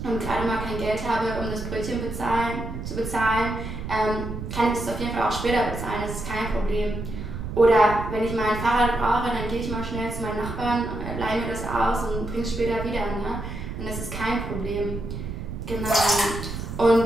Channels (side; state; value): right; noise; rumble, 7 dB below the sound